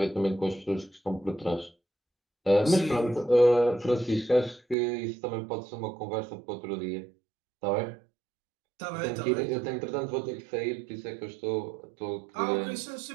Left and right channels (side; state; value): left; drops out; at 4.8 s